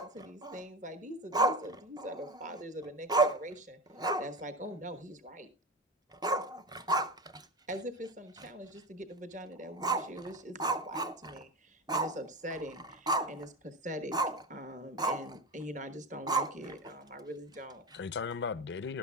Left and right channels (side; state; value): both; normal; correlation 0.24